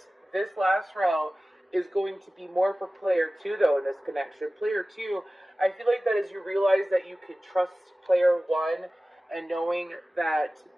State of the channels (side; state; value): both; normal; correlation 0.97